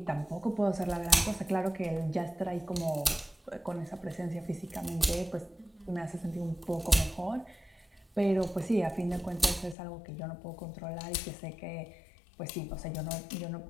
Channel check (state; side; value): drops out; right; at 9.8 s